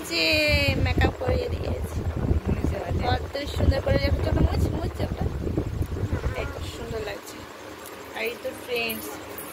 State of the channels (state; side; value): identical; both; correlation 1.00